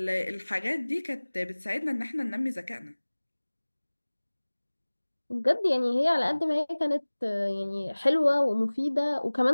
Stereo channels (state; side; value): inverted; both; correlation -1.00